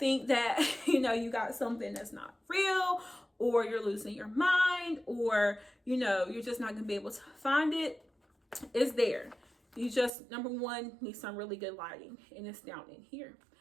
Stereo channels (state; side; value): drops out; left; at 10.1 s